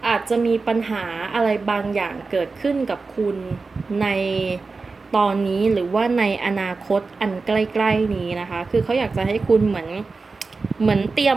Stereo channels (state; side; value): quieter; left; 4.1 dB